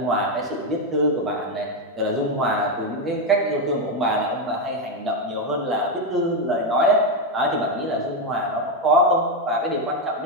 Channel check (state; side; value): normal; both; correlation 0.07